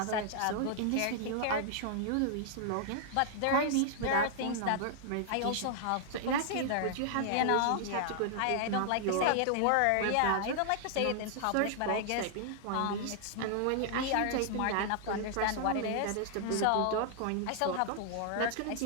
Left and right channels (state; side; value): different; both; correlation -0.01